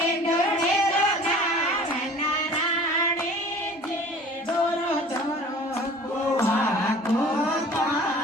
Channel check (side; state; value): both; normal; correlation 0.46